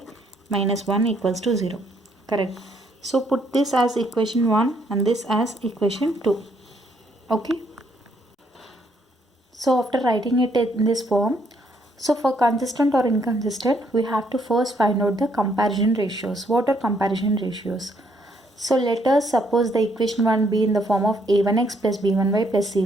minus 1 equals to 0. Correct. So put this as equation 1 and this as equation 2. Okay. So after writing it in this form, so for consistent or inconsistent, we have to first find out the comparison ratios. What are comparison ratios? So let us suppose the equation 1 be in the form of a1x plus b1y plus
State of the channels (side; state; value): both; normal; correlation 0.70